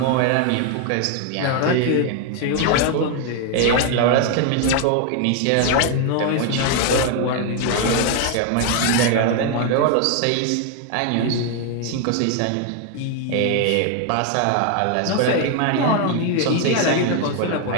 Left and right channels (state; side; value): different; both; correlation 0.01